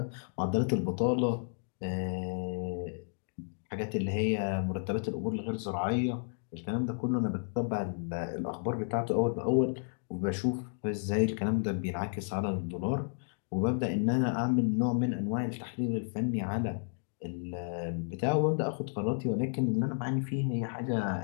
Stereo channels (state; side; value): silent; right; digital silence